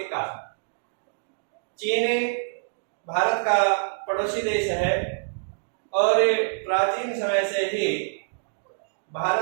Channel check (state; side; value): silent; left; digital silence